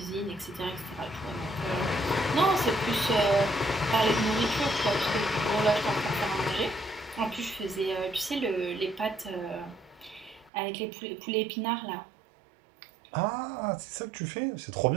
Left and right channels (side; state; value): left; drops out; at 10.5 s